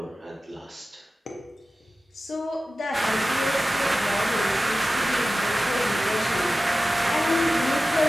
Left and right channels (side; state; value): both; normal; correlation 0.95